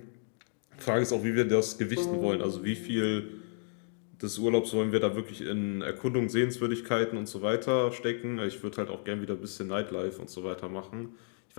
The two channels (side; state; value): right; silent; 57 dB below the other